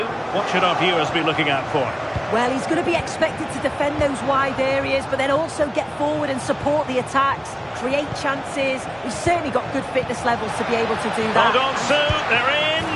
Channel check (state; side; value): identical; both; correlation 1.00